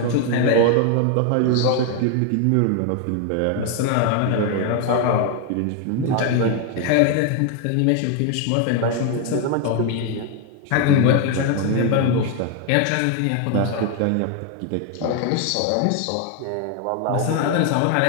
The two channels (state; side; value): different; both; correlation 0.01